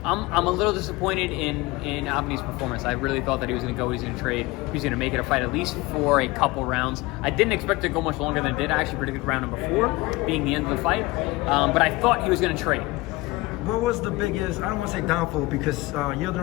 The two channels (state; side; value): quieter; right; 21.5 dB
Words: I'm a little disappointed in Avni's performance. I really thought that he was going to go, he was going to trade, he was going to make it a fight at least for a couple rounds. I didn't expect it to go much longer than it did. I actually predicted round number 4 being the end of the fight, but I thought he was going to trade. What was the biggest, I don't want to say downfall, because